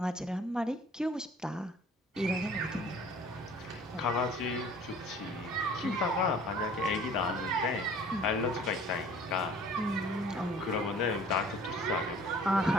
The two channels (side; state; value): both; normal; correlation 0.50